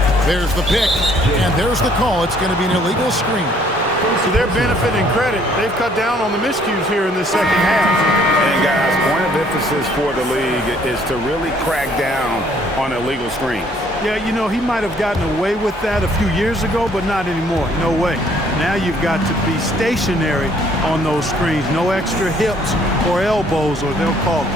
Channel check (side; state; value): both; normal; correlation 0.62